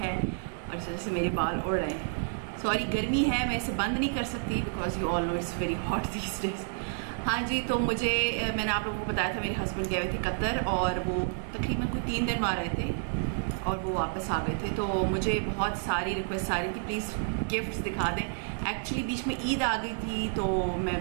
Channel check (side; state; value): left; silent; digital silence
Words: है और इस वजह से मेरे बाल उड़ रहे हैं। सॉरी, गर्मी है, मैं इसे बंद नहीं कर सकती because you all know it's very hot these days. हाँ जी, तो मैंने आप लोगों को बताया था मेरे हस्बैंड गए हुए थे कतर और वो तकरीबन कोई 3 दिन वहाँ रहे थे और वो वापस आ गए थे। तो मुझे बहुत सारी रिक्वेस्ट आ रही थी प्लीज़ गिफ्ट्स दिखा दें। एक्चुअली बीच में ईद आ गई थी तो मैं